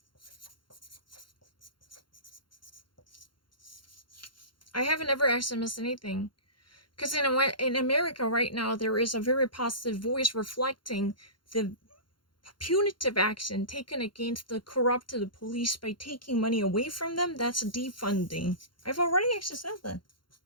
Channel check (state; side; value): late; right; 0.72 ms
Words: I haven't ever actually missed anything. Because in America right now, there is a very positive voice reflecting the punitive action taken against the corrupted police by taking money away from them. That's defunding. I've already actually said that.